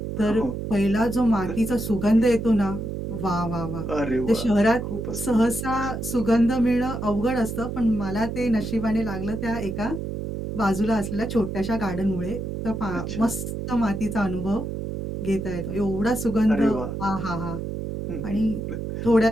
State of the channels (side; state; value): right; noise; hum, 5 dB below the sound